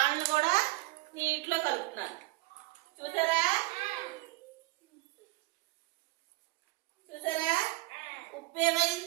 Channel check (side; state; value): left; quieter; 20.6 dB